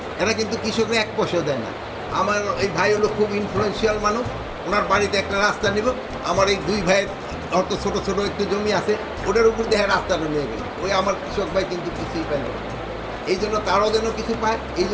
এরা কিন্তু কৃষকরা 1 পয়সাও দেয় না। আমার এই ভাই হলো খুব ইনফ্লুয়েন্সিয়াল মানুষ, ওনার বাড়িতে একটা রাস্তা নিব, আমার এই 2 ভাইয়ের অত ছোটো ছোটো একটু জমি আছে, ওটার উপর দেখে রাস্তাটা নিয়ে গেল, ওই আমার কৃষক ভাই কিন্তু কিছুই পাইল না। এই জন্য তারাও যেন কিছু পায়, এই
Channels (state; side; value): identical; both; correlation 1.00